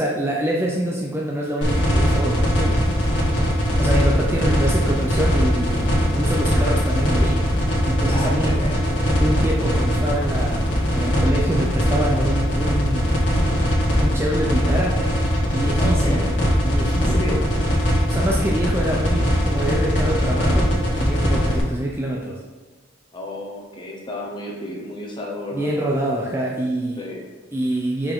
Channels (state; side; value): normal; both; correlation 0.80